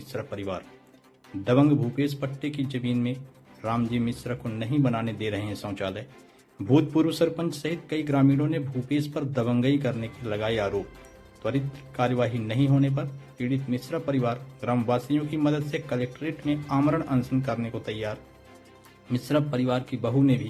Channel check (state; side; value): identical; both; correlation 1.00